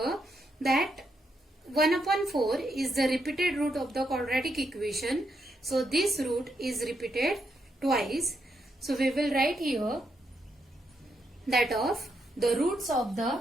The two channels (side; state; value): both; normal; correlation 0.80